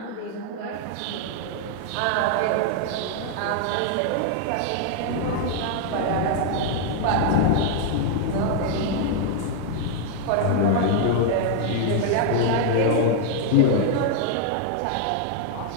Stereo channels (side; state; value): both; different; correlation 0.00